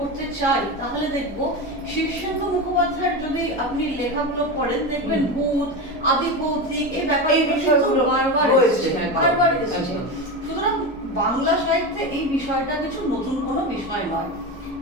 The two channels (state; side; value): normal; both; correlation 0.20